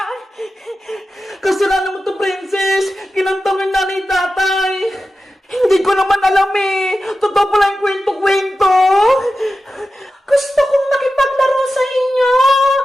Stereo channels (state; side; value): normal; both; correlation 0.92